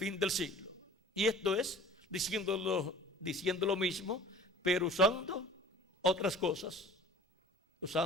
del siglo. Y esto es diciendo lo mismo, pero usando otras cosas,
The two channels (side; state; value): both; normal; correlation 0.45